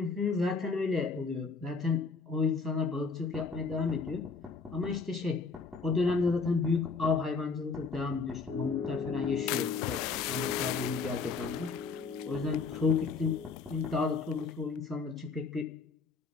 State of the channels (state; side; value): quieter; right; 4.6 dB